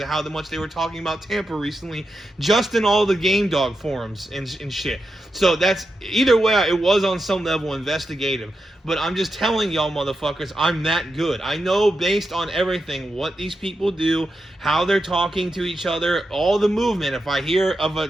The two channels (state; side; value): normal; both; correlation 0.88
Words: of how much they were talking about Tampa recently, just in all the game dog forums and shit. So that's, either way, it was on some level investigative. But I'm just telling y'all motherfuckers, I'm that good. I know based on everything what these people do, how they're talking to each other, all the movement. If I hear of